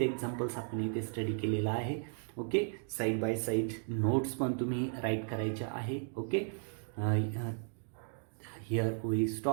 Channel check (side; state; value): left; silent; 54 dB below the other